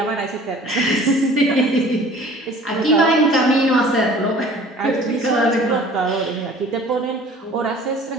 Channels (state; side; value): normal; both; correlation 0.48